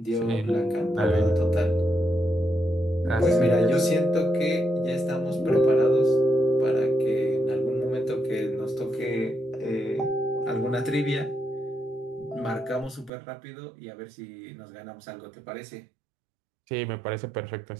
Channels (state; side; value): drops out; left; at 13.1 s